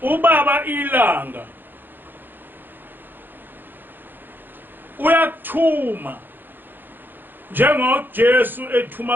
ubaba ilanga uyakuthuma njengoJesu ethuma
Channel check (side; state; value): left; late; 0.093 ms